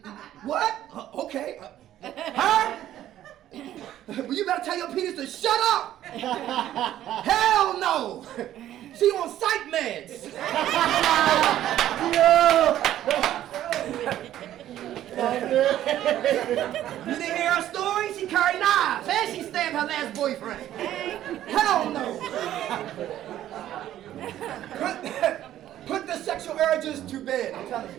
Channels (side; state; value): left; quieter; 12.4 dB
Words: What? Okay. Huh? Well, you better tell your penis to shut up. Hell no. She on psych meds. You didn't hear her story? She carried knives and she stabbed her last boyfriend. Hell no. Put the sexual urges to bed. I'm telling